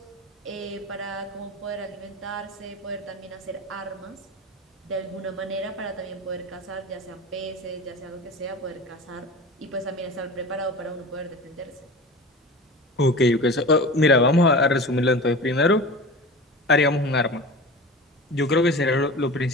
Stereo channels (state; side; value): normal; both; correlation 0.34